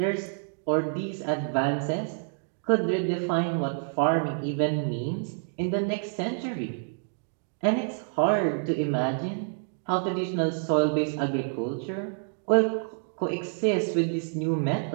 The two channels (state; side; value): silent; left; digital silence